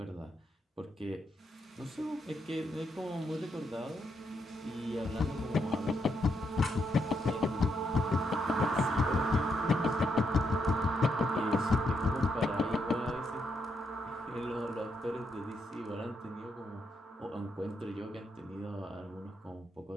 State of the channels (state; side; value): normal; both; correlation 0.79